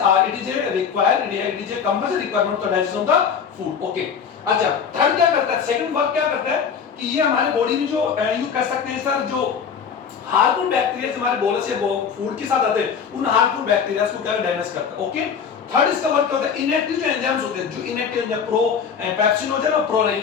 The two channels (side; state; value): right; quieter; 6.8 dB